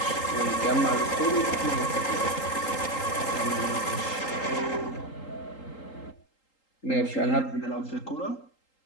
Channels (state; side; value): late; right; 3.8 ms